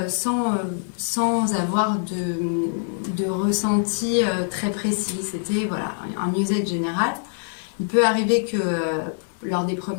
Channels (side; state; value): right; silent; digital silence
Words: sans avoir de ressenti très précis. C'était voilà, un mieux-être général. Il peut arriver que lors des